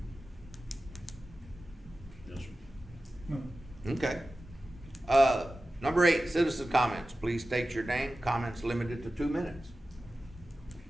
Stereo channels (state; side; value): normal; both; correlation 0.94